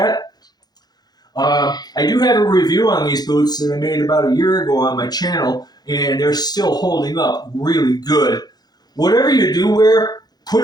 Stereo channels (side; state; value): right; late; 0.19 ms